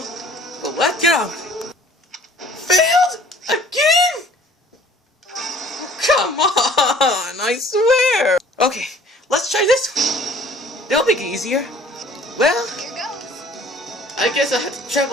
but let's go. Failed? Again? Oh, come on, I swear. Okay, let's try this one. That'll make it easier. Well, Here goes. I guess I have to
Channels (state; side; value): normal; both; correlation 0.52